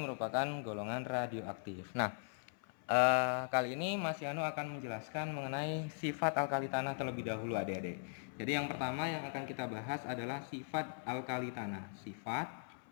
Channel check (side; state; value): right; silent; 51 dB below the other